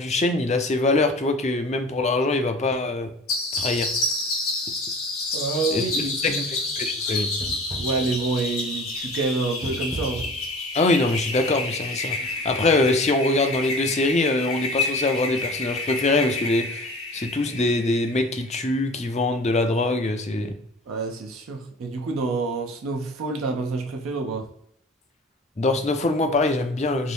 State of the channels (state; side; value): normal; both; correlation 0.41